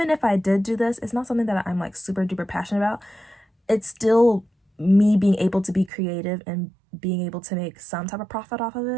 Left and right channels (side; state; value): left; drops out; at 5.9 s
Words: if I did do this, it's not something that I'm like super duper passionate about. It's still me being able to be creative and being able to make some type of profit off of